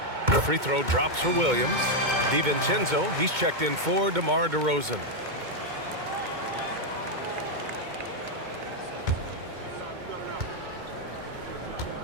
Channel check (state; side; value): late; left; 2.2 ms